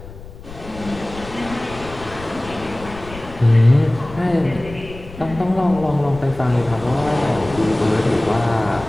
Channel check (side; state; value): left; noise; rumble, 15 dB below the sound